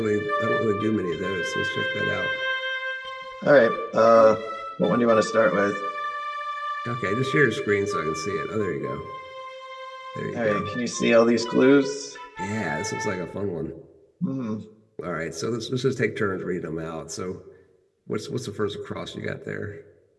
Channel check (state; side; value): identical; both; correlation 1.00